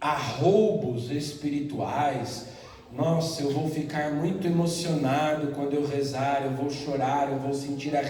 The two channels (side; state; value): both; identical; correlation 1.00